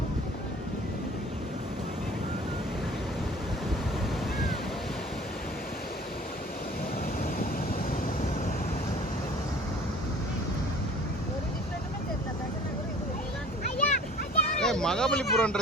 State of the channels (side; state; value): both; normal; correlation 0.48